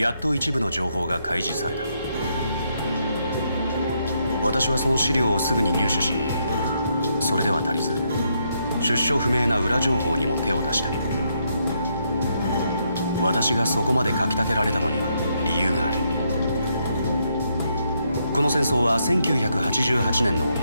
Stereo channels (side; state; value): both; inverted; correlation -0.76